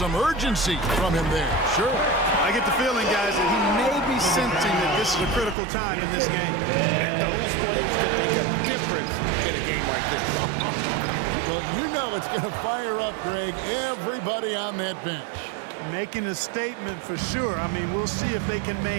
urgency from him there, sure. I get the feeling, guys, that he may be sensing that this is a critical time in this game. And those plays can make a difference in a game like this. Well, you know it's going to fire up, Greg, everybody on that bench. Making a statement for sure. I mean, we'll see if they can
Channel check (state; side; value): drops out; left; at 5.6 s